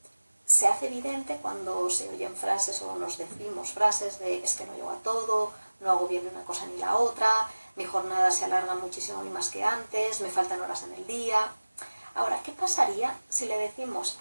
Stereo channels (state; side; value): inverted; both; correlation -1.00